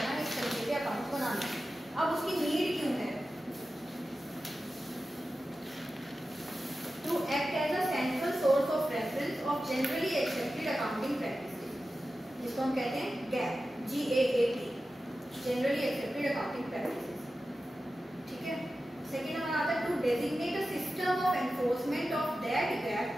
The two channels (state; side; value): normal; both; correlation 0.93